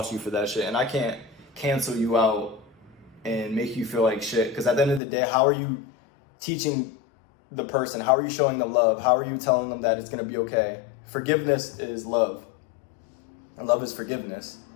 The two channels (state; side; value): drops out; right; at 5.0 s